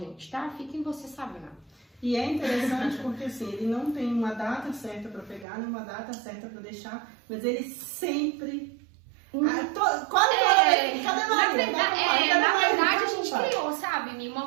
tá? Fiquem vocês sabendo. E é interessante porque assim, ele não tem uma data certa para pegar, nem uma data certa para deixar, mas ele sempre. Quase toda vez. Cadê Maria? Na verdade, a gente criou, sabe, uma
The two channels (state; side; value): drops out; left; at 5.5 s